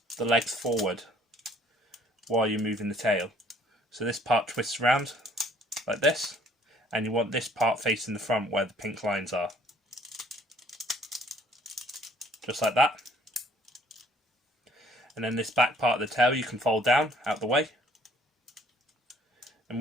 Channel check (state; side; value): normal; both; correlation 0.60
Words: the legs forward while you're moving the tail. So this part twists around like this, and you want this part facing the front where the pink lines are. Just like that. And then this back part of the tail you can fold down out the way. And